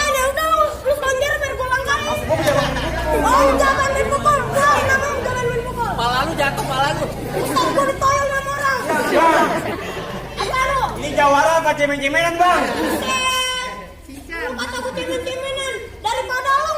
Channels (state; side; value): identical; both; correlation 1.00